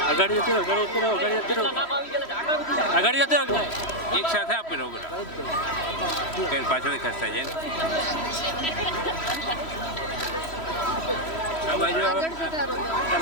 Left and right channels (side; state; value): right; late; 3.1 ms